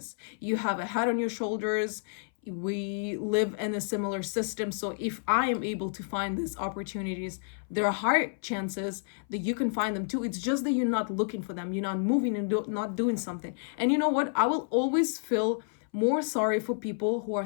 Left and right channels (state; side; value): silent; right; 58 dB below the other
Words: You have a head on your shoulders. we live in a similar system. So if I am able to find these opportunities, there are high chances that you can find them too. It's just that you're not looking for them, you're not moving and not doing something. And you know what, I will always feel more sorry for people who are